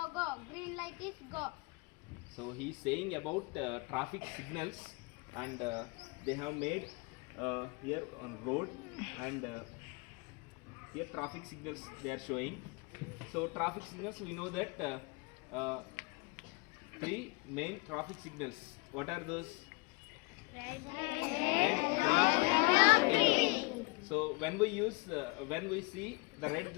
go, green light is go. So he is saying about traffic signals, and they have made here on road, and here traffic signals they are showing. So traffic signals, we know that 3 main traffic signals. What are those? Red, green, yellow. So when we see the red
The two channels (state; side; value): quieter; right; 29.1 dB